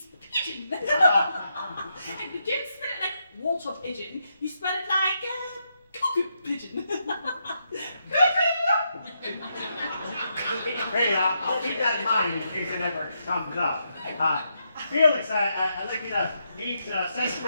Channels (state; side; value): inverted; both; correlation -0.81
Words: pigeon. And you don't spell it like water pigeon. You spell it like cuckoo pigeon. Hey, I'll keep that in mind in case it ever comes up. Felix, I'd like you to meet